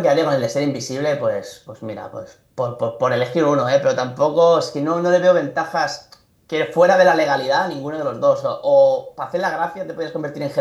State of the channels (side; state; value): both; identical; correlation 1.00